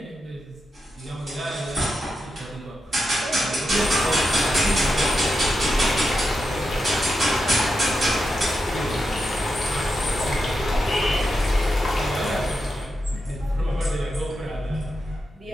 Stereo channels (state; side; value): normal; both; correlation 0.87